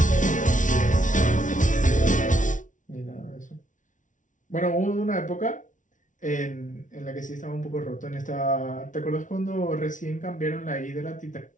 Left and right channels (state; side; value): late; right; 0.37 ms